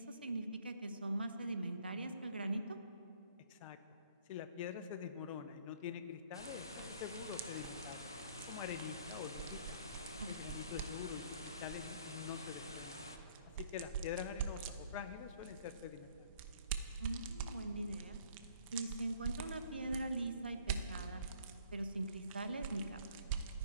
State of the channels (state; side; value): inverted; both; correlation -0.58